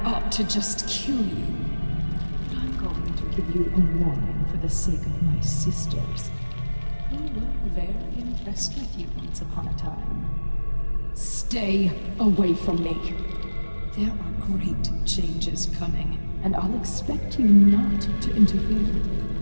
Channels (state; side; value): inverted; both; correlation -1.00